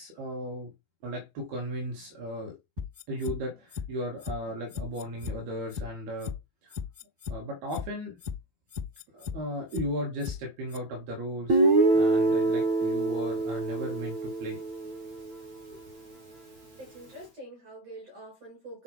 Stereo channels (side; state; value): left; late; 9.0 ms